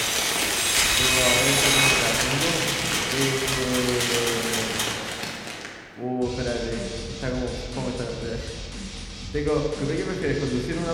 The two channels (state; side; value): identical; both; correlation 1.00